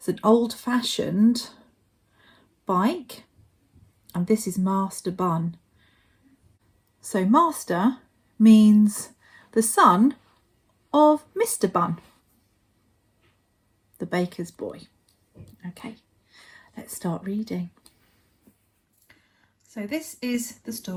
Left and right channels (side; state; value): both; identical; correlation 1.00